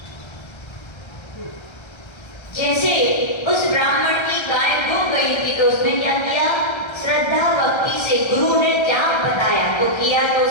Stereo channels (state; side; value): late; right; 1.3 ms